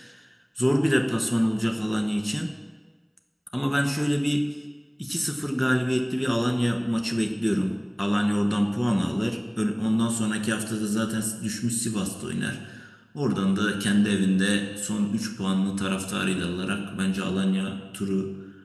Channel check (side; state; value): both; identical; correlation 1.00